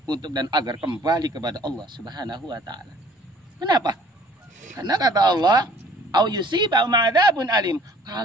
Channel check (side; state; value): both; normal; correlation 0.55